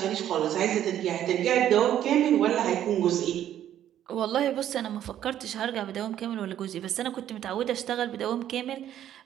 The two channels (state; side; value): quieter; left; 11.2 dB